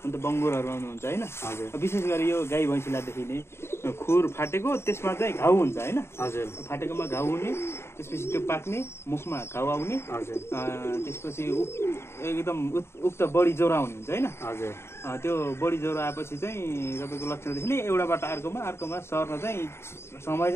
अन्त बङ्गुरहरू आउनुहुन्छ होइन। विशेष गरी यो गाई भैँसीलाई देखिने खुर फाटेको, त्यसमा चाहिँ घाउ हुन्छ होइन। हजुर फाटेकोमा घाउ हुने, त्यसपछि त्यो पाक्ने, मुखमा घाउ आउने, हजुर त्यसपछि एकदम उक्त बढी ज्वरो आउने हुन्छ होइन। हजुर त्यो बढी ज्वरो आएपछि चाहिँ तपाईँको लक्षण देखिने एउटाबाट अर्कोमा सर्न चाहिँ समय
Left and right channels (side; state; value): right; late; 0.12 ms